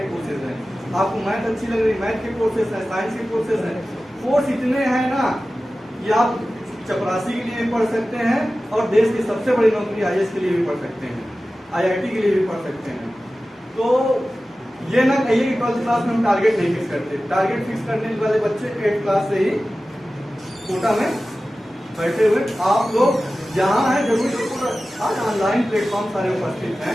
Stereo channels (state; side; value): normal; both; correlation 0.95